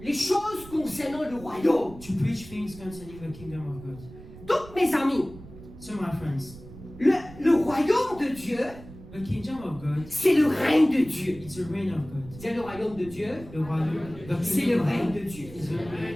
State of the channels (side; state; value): right; noise; rumble, 17 dB below the sound